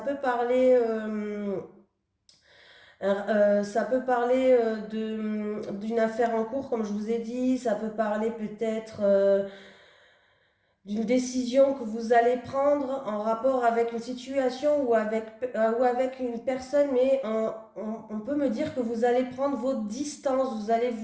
parler, d'une affaire en cours comme je vous ai dit. Ça peut parler peut-être d'une décision que vous allez prendre en rapport avec une situation ou avec une personne, mais on peut me dire que vous allez prendre vos distances, vous allez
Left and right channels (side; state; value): both; identical; correlation 1.00